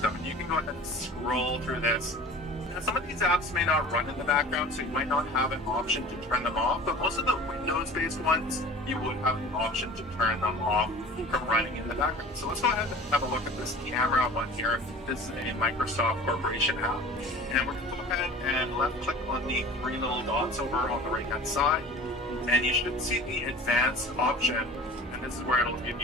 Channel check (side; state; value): both; normal; correlation 0.41